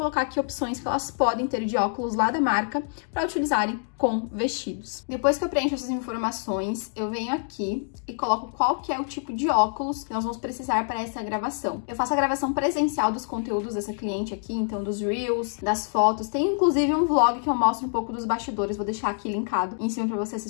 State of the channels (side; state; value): right; silent; 61 dB below the other